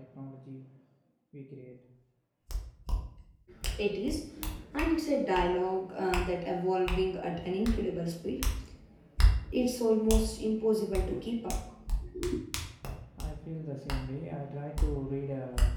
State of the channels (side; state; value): both; identical; correlation 1.00